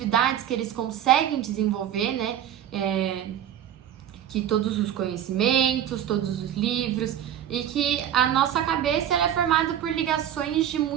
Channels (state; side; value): quieter; left; 10.5 dB